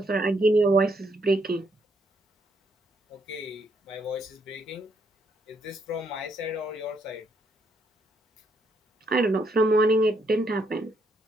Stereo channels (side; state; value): both; normal; correlation 0.74